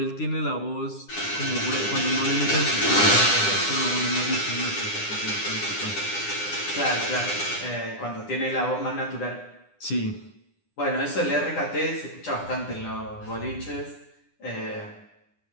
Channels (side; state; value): right; late; 9.9 ms